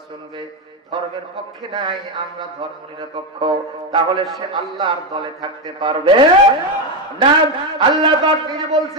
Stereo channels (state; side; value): normal; both; correlation 0.09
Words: চলবে, ধর্মের পক্ষে নাই, আমরা ধর্ম নিরপেক্ষ, তাহলে সে আল্লাহর দলে থাকতে পারবে না। আল্লাহ পাক নিজে